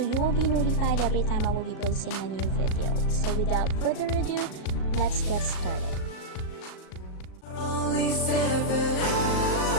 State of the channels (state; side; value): late; right; 38 ms